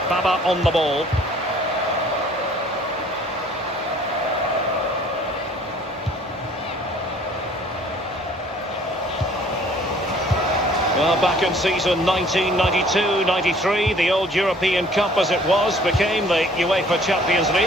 Baba on the ball. Well, back in season 1992-93, the old European Cup as it was became the UEFA Champions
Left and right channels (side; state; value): both; normal; correlation 0.55